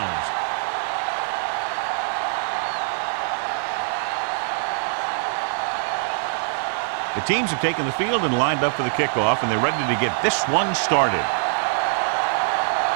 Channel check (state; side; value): silent; left; digital silence